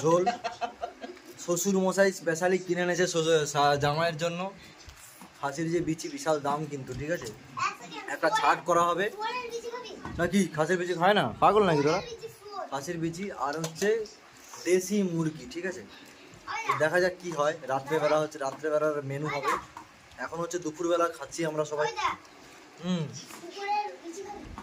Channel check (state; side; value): identical; both; correlation 1.00